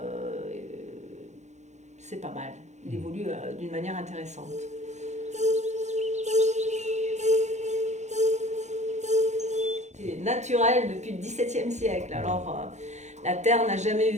c'est pas mal, il évolue d'une manière intéressante. C'est naturel depuis le XVIIe siècle. Alors, la Terre n'a jamais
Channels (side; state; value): left; late; 0.33 ms